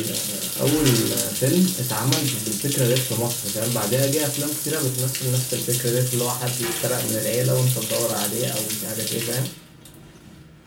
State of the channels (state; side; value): identical; both; correlation 1.00